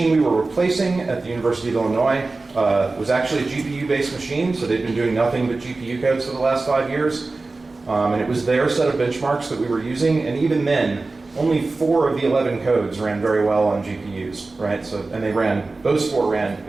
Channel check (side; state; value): left; quieter; 3.5 dB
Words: we were replacing at the University of Illinois was actually a GPU-based machine, so they'd been doing nothing but GPU codes for the last 5 years. And it was their set of benchmarks that we were using, and even then, only 4 of the 11 codes ran very well on GPUs, right? So, and those 4 ran